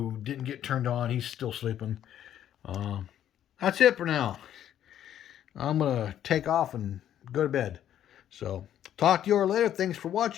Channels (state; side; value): quieter; right; 10.8 dB